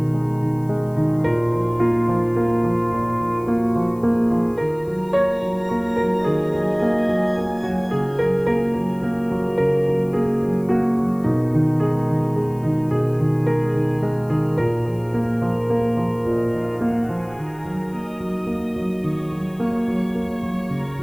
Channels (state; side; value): noise; left; hiss, 28 dB below the sound